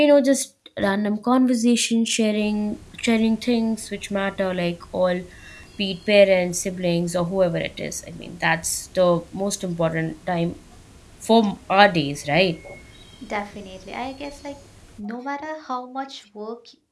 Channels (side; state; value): both; identical; correlation 1.00